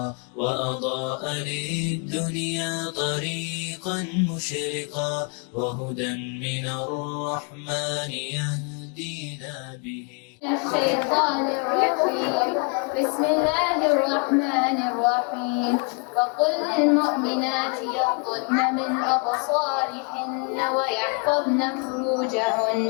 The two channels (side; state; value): right; quieter; 34.7 dB